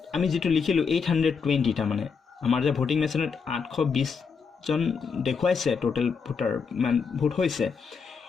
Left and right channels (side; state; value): right; quieter; 5.7 dB